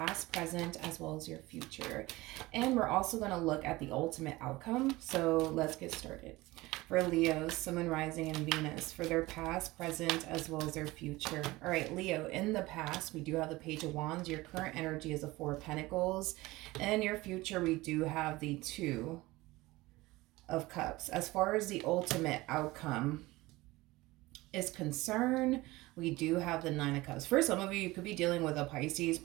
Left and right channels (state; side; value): quieter; left; 20.1 dB